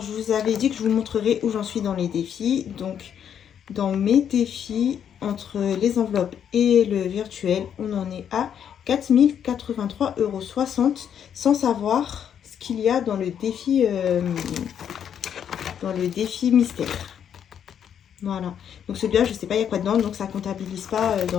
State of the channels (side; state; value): right; quieter; 8.7 dB